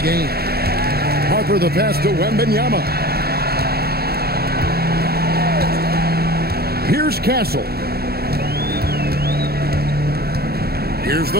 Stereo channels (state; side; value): late; left; 0.46 ms